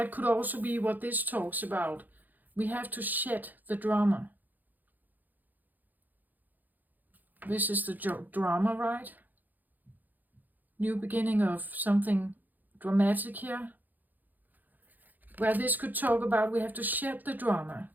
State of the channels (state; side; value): late; left; 0.084 ms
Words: could also be what this talks about. We have to shed the drama. This is the drama, right? New beginning of something dramatic here. Where this could talk about we have to shed the drama.